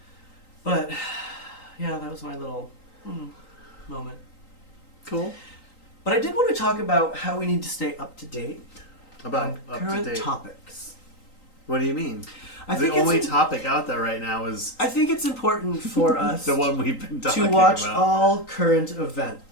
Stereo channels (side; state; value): right; late; 3.8 ms